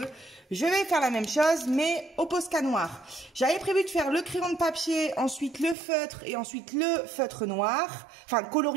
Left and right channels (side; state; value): left; drops out; at 5.8 s